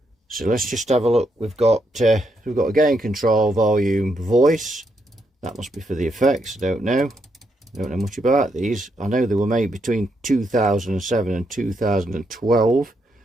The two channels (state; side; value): normal; both; correlation 0.78